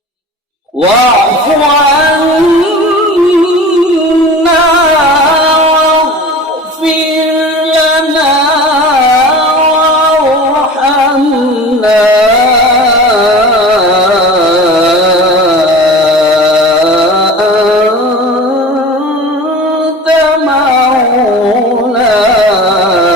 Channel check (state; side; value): normal; both; correlation 0.37